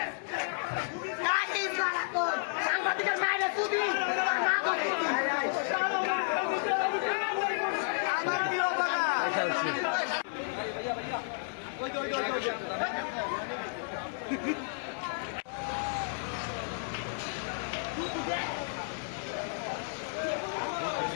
সাংবাদিকের মায়ের তুদি আমার প্রিয় বাবা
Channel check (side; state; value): right; silent; 56 dB below the other